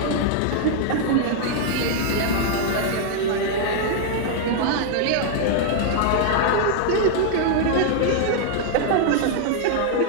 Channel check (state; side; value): different; both; correlation 0.00